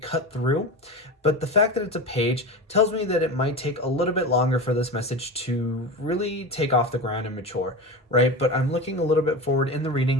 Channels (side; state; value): both; normal; correlation 0.26